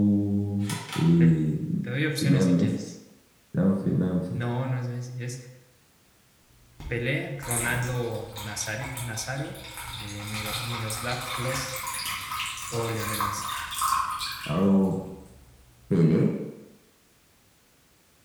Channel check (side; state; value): both; identical; correlation 1.00